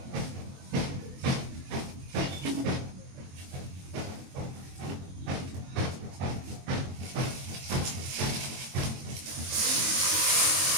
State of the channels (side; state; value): left; late; 22 ms